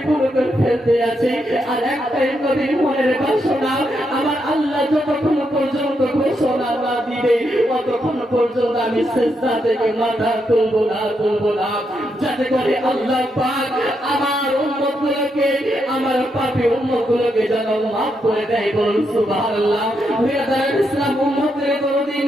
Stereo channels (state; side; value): normal; both; correlation 0.81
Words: ফেলতে আছে, আর একটাই নবীর মনের বাসনা, আমার আল্লাহ যতক্ষণ পর্যন্ত ঘোষণা না দিবে ততক্ষণ পর্যন্ত আমি সিজদা থেকে মাথা তুলবো না, যাতে করে আল্লাহ পাক আমার উম্মতগুলোকে, আমার পাপী উম্মতগুলোকে যেন মাফ করে দেয়। বলুন সুবহানাল্লাহ। বিরাদার ইসলাম উম্মতের দরদি